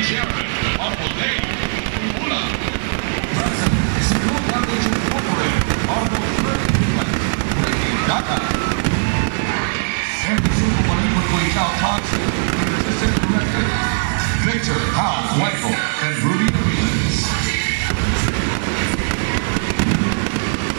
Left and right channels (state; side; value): silent; left; digital silence